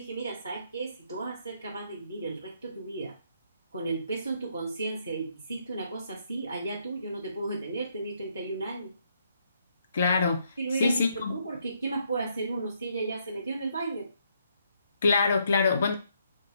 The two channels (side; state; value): both; inverted; correlation -0.73